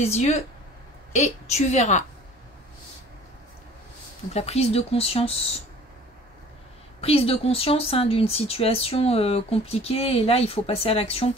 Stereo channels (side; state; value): both; normal; correlation 0.48